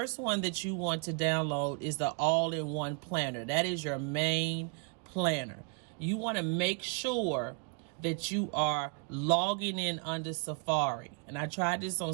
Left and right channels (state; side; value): quieter; left; 34.3 dB